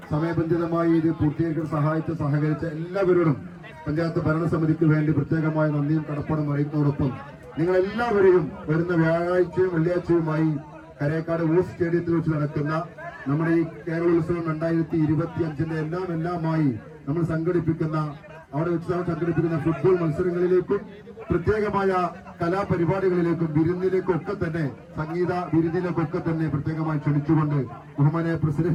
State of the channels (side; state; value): both; identical; correlation 1.00